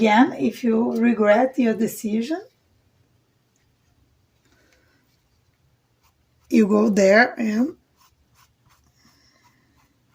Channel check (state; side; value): identical; both; correlation 1.00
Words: if you regret your decision, you go there and